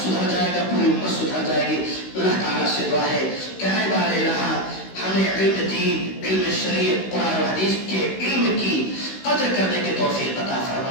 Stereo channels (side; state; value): right; late; 16 ms